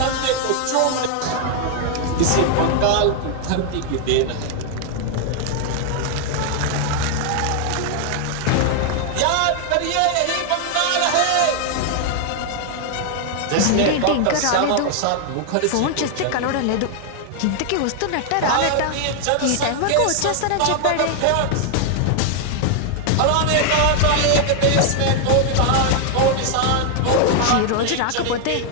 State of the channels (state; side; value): different; both; correlation 0.00